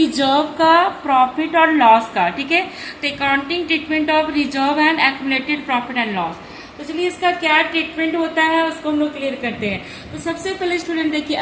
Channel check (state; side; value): identical; both; correlation 1.00